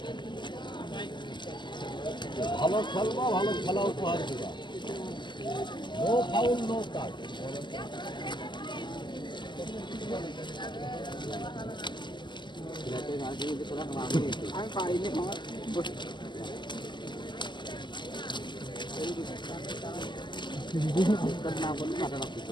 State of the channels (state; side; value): late; right; 0.22 ms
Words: ভালো খেলবা, ভালো খেলা উপহার দিবা। নো ফাউল, নো কাট। আমি পারিনি।